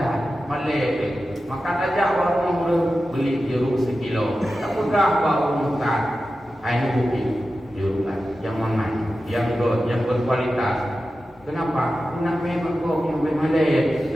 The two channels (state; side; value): normal; both; correlation 0.93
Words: malai. Makan aja baru beli jeruk sekilo. Tak pegang baru makan. Ini bukit jeruk yang aman, yang berkualitas. Kenapa? Nak memang kau yang bermalai.